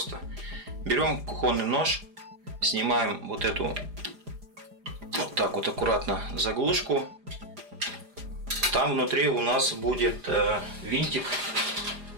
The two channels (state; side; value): late; left; 4.9 ms